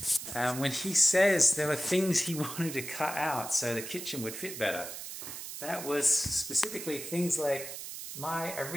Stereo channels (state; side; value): noise; right; hiss, 9 dB below the sound